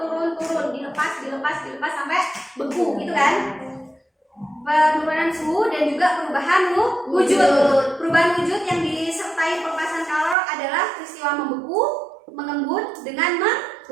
dilepas sampai beku gitu kan. Penurunan suhu dan juga perubahan wujud. Perubahan wujud yang disertai pelepasan kalor adalah peristiwa membeku, mengembun dengan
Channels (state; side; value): drops out; left; at 10.4 s